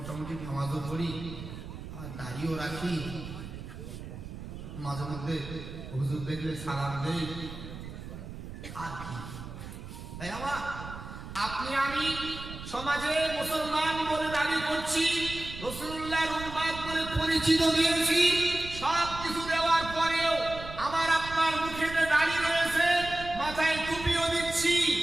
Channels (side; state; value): right; noise; rumble, 11 dB below the sound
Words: নামাজও পড়ি, আর দাড়িও রাখি, মাঝে মধ্যে হুজুর দেখলে সালাম দেই, আর কি? তাই আমার আপনি আমি সমাজে মুসলমান বলে দাবি করছি, রাসূলুল্লাহর উম্মত বলে পরিচিত দিয়েছি, সব কিছু দেওয়ার পরেও আমার আপনার মুখেতে দাড়ি রয়েছে, মাথায় টুপিও দিচ্ছি,